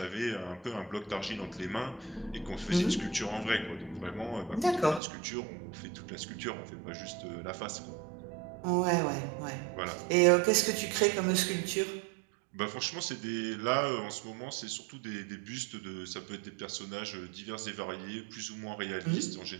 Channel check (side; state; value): left; drops out; at 5.0 s